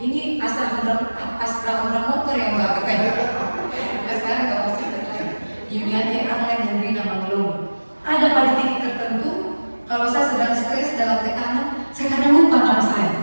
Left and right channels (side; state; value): both; inverted; correlation -1.00